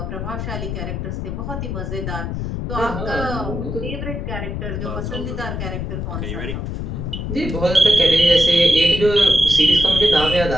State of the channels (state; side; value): noise; left; rumble, 4 dB below the sound